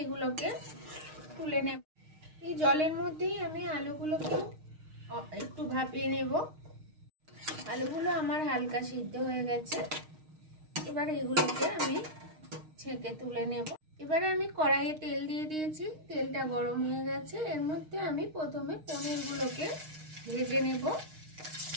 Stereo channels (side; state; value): left; late; 6.5 ms